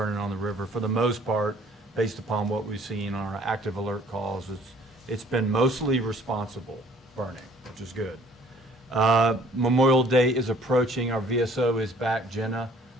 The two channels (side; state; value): both; normal; correlation 0.56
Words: on the river. For the most part, based upon what we've seen on our active alert calls, it's been mostly responsible burning, which is good. Memorial Day is approaching. Our VSO is back, Jenna,